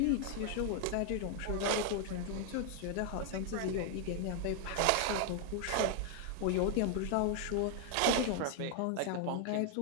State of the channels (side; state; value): both; different; correlation 0.00